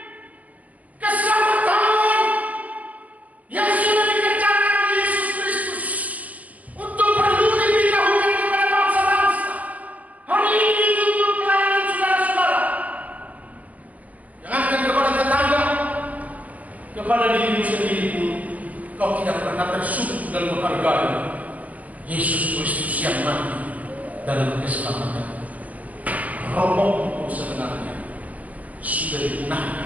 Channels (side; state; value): left; late; 0.073 ms